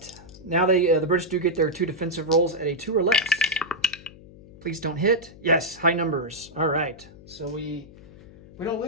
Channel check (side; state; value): left; noise; hum, 20 dB below the sound